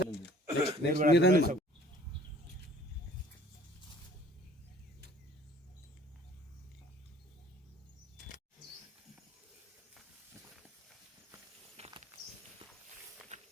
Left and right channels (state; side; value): normal; both; correlation 0.54